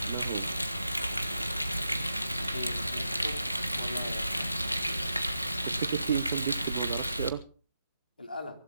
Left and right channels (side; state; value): both; inverted; correlation -0.86